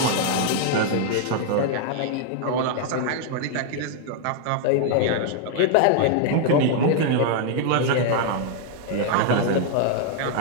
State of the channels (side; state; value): both; different; correlation 0.00